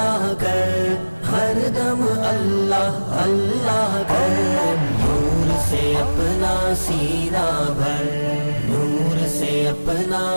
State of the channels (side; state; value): both; inverted; correlation -1.00